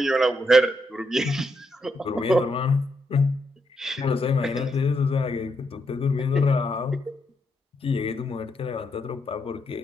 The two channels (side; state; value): both; normal; correlation 0.80